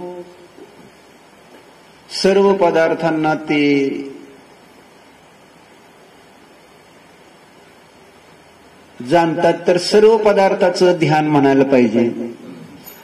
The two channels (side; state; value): both; identical; correlation 1.00